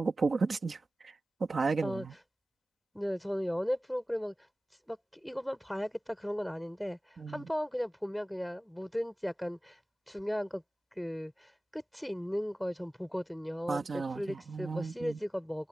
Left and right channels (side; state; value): both; normal; correlation 0.96